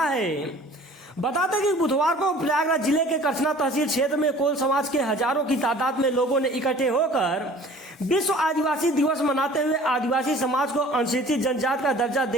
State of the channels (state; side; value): normal; both; correlation 0.48